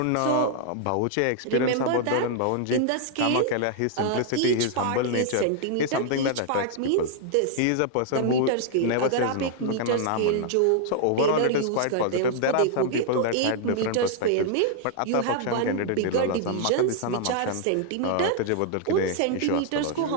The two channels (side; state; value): both; different; correlation -0.01